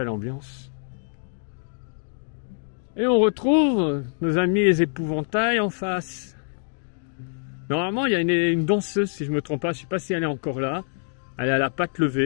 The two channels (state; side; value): silent; right; digital silence